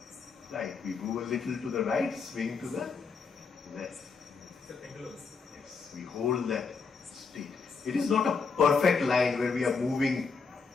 right. We move a little to the right, swing to the left. Yes, we hold that state. It is not a perfect line where we are moving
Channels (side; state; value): right; quieter; 5.1 dB